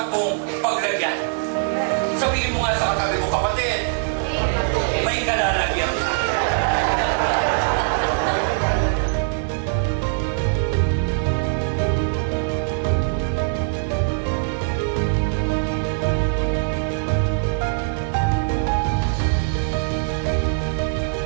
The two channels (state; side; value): silent; left; digital silence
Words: mong paglagyan. Sabihin mo nga sa katabi mo, kapatid, may kalalagyan ka.